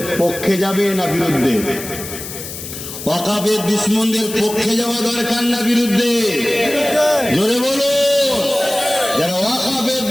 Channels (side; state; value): left; noise; hiss, 10 dB below the sound